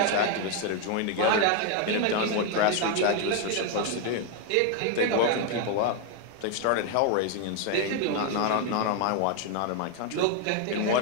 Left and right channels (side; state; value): both; different; correlation 0.01